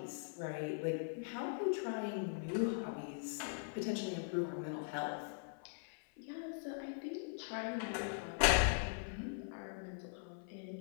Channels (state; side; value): silent; right; 50 dB below the other